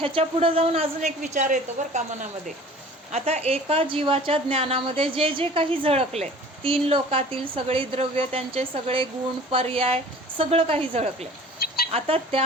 पुढं जाऊन अजून एक विचार येतो बरं का मनामध्ये. आता एका जीवाच्या ज्ञानामध्ये जे जे काही झळकले, तीन लोकातील सगळी द्रव्य, त्यांचे सगळे गुण, पर्याय, सगळं काही झळकले. आता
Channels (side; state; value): both; normal; correlation 0.45